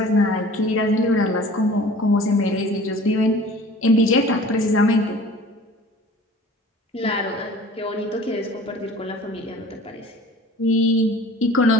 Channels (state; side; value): normal; both; correlation 0.45